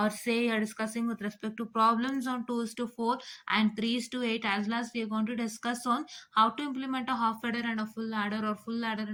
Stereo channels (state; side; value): identical; both; correlation 1.00